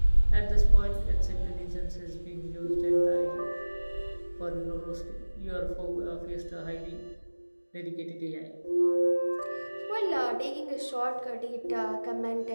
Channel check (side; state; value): both; inverted; correlation -1.00